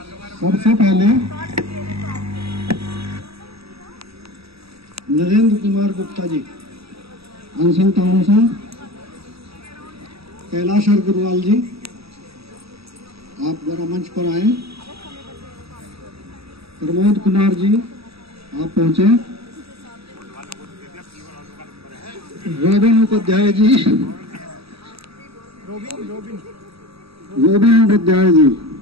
सबसे पहले नरेंद्र कुमार गुप्ता जी, अनशन टाउन से। कैलाश अग्रवाल जी, आप जरा मंच पर आए। प्रमोद कुमार जी, आप पहुंचे। Robin Upadhyay ji, robin Upadhyay ji.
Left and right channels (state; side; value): late; left; 0.77 ms